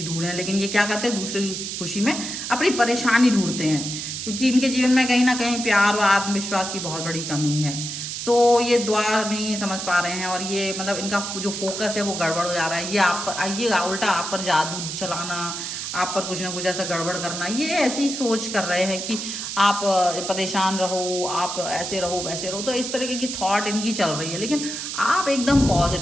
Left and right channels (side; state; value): right; noise; hiss, 5 dB below the sound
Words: ढूंढें। लेकिन ये क्या करते हैं, दूसरों की खुशी में अपनी परेशानी ढूंढते हैं, क्योंकि इनके जीवन में कहीं ना कहीं प्यार और आत्मविश्वास की बहुत बड़ी कमी है। सो ये दुआ नहीं समझ पा रहे हैं, और ये मतलब इनका जो फोकस है वो गड़बड़ हो जा रहा है। ये आप पर, ये उल्टा आप पर जादू चलाना, आप पर कुछ ना कुछ ऐसा गड़बड़ करना, ये ऐसी सोच कर रहे हैं कि आप परेशान रहो, आप ऐसे रहो वैसे रहो। तो इस तरीके की थॉट इनकी चल रही है, लेकिन आप एकदम